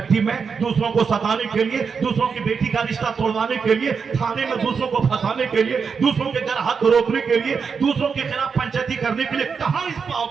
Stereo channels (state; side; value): quieter; left; 5.8 dB